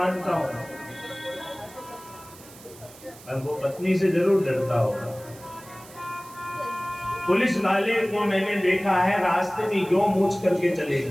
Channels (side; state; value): right; noise; hiss, 20 dB below the sound